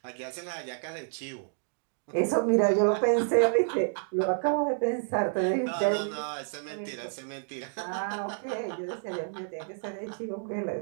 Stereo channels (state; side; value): silent; left; digital silence